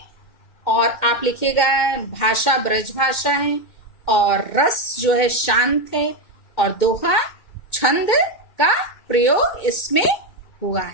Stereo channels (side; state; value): right; late; 2.1 ms